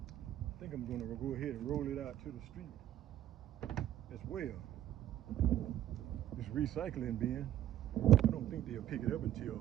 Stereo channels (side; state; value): left; quieter; 12.3 dB